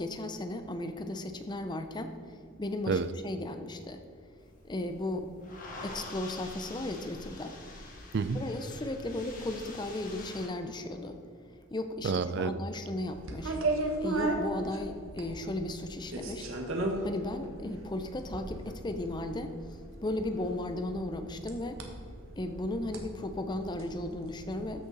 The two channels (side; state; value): both; normal; correlation 0.47